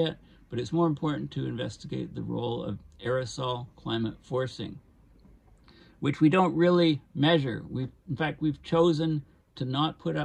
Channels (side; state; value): both; identical; correlation 1.00